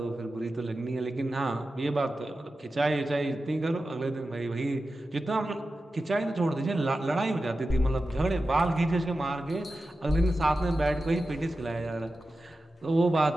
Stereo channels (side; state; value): both; normal; correlation 0.93